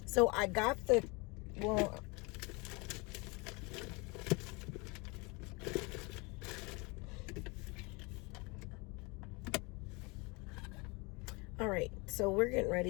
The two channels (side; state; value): right; quieter; 28.0 dB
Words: So I got all right, so we're getting